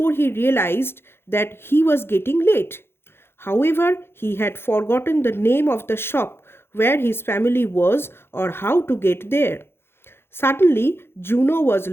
he realized that he was getting late. However, he had forgotten the name of the shop where his family was or how to get there. Suddenly, Juno was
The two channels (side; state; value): right; late; 0.11 ms